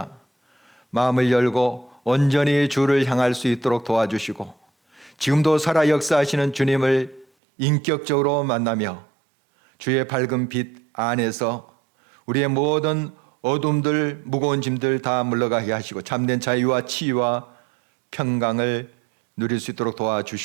마음을 열고 온전히 주를 향할 수 있도록 도와주시고 지금도 살아 역사하시는 주님을 인격적으로 만나며 주의 밝은 빛 안에서 우리의 모든 어둠들 무거운 짐들 다 물러가게 하시고 참된 자유와 치유와 평강을 누릴 수 있도록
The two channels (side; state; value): left; drops out; at 7.2 s